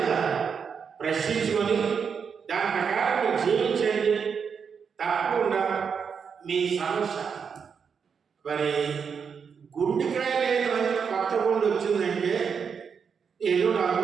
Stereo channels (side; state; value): left; quieter; 6.4 dB